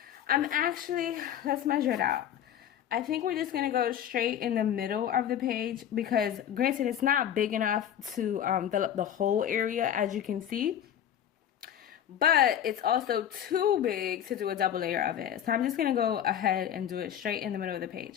let's measure it out. I think we're just going to go straight in the middle of the page because, granted, it's not big enough to fill up the whole area, as you can see. But it's also too big to do a double layer of it. So I'm just going to go ahead and do it straight in the middle of the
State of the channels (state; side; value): quieter; right; 10.1 dB